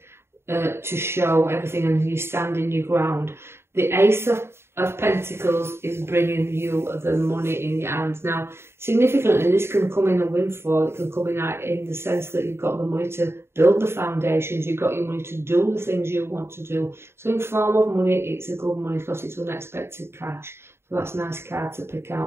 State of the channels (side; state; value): left; late; 0.12 ms